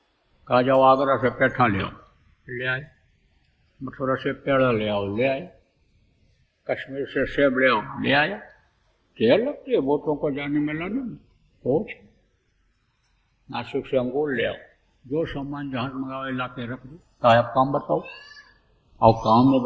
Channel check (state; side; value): identical; both; correlation 1.00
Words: कहा जाओ आगरा से पेठा ले आओ, ले आए। मथुरा से पेड़ा ले आओ, ले आए। कश्मीर से सेब ले आओ, ले आया। देर लगती है बोटों को जाने में, लाने में कुछ। नासिक से अंगूर ले आओ, जो सामान जहाज मंगाओ ला के रख दो। कहा आप काम बताओ, और काम नहीं